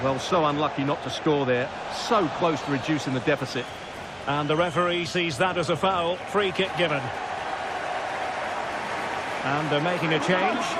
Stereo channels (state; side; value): identical; both; correlation 1.00